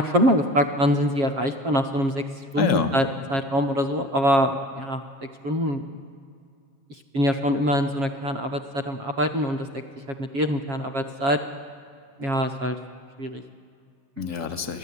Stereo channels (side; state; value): left; late; 7.3 ms